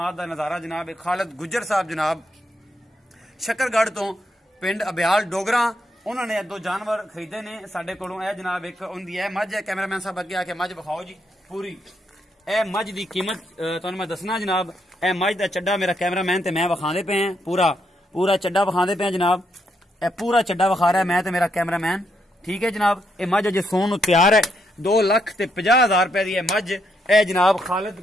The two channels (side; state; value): both; normal; correlation 0.78